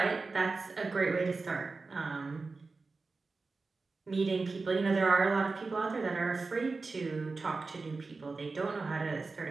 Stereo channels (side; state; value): left; quieter; 3.9 dB